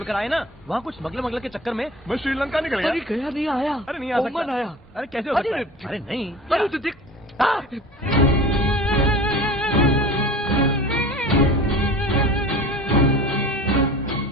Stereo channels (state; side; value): normal; both; correlation 0.38